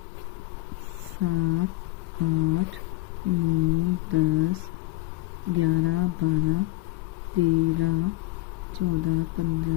7 8 9 10 11 12 13 14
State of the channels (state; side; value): quieter; right; 19.2 dB